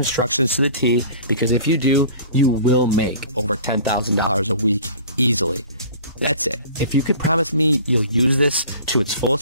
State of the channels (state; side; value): inverted; both; correlation -0.44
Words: to the T, because if you do, you will make over $10,000 a week easily. That's it. If you could promise me you'll use this to its